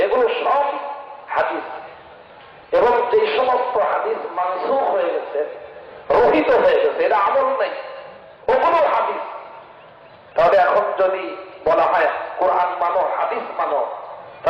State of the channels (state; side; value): identical; both; correlation 1.00